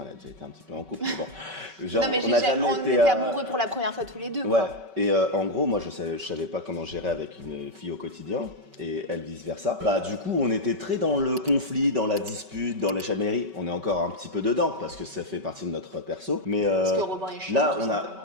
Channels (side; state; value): left; late; 5.3 ms